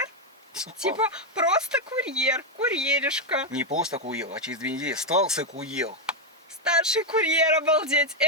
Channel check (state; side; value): normal; both; correlation 0.03